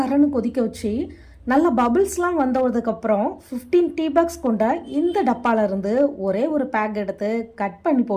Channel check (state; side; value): identical; both; correlation 1.00